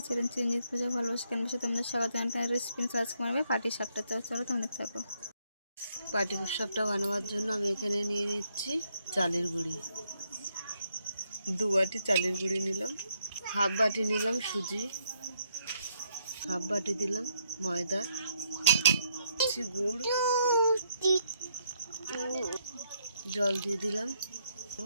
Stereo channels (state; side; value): inverted; both; correlation -0.74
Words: channel Chiranjit পূজা ভালোবাসা কেন বসে তোমাদের স্বাগত জানাই। রেসিপি সার্চ করবে পাটি শাকটা, চলো তোমরা থাকো। পাটি শাকটা বানাবার জন্য আমি এখানে নিয়ে নিচ্ছি চালের গুঁড়ি। 2 বাটি চালের গুঁড়ি নিলাম, হাফ বাটি নিলাম সুজি, হাফ বাটি দিলাম ময়দা, গুড়, জল দিয়ে দিলাম,